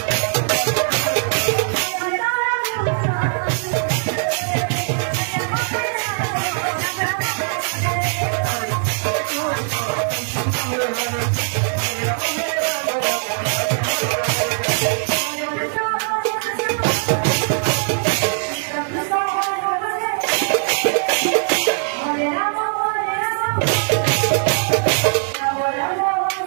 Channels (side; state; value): left; silent; digital silence